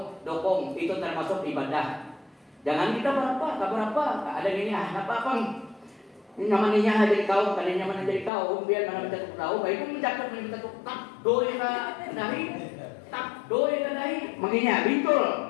dokong itu termasuk ibadah. Jangan kita berapa, ada ini apa. Nyamannya jadi kaum, kali nyaman jadi kaum, biar mana mencatuk tahu, baik pun mencatuk tak doi ka dahi, tak doi ka dahi, menginya bintul,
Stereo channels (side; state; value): right; drops out; at 8.3 s